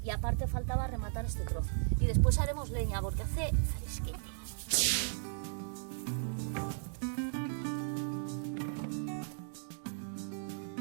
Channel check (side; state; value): left; silent; digital silence